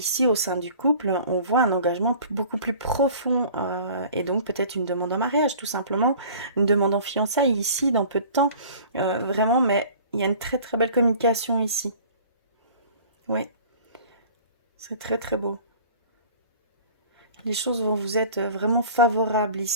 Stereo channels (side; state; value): both; inverted; correlation -0.46